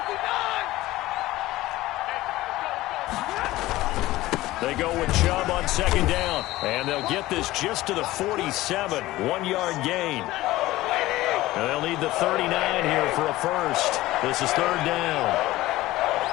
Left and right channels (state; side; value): quieter; right; 17.2 dB